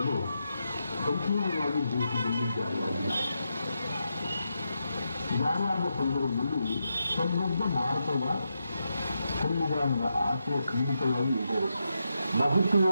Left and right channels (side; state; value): both; inverted; correlation -0.85